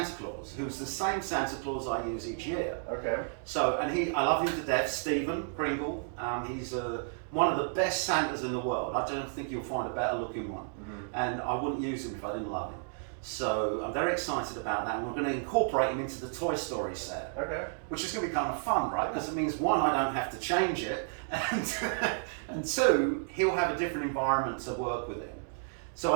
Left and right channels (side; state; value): left; silent; digital silence